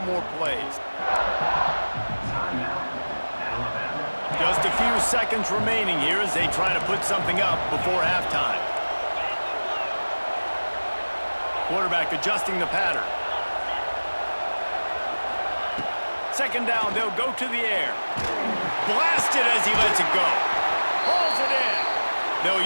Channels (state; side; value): inverted; both; correlation -1.00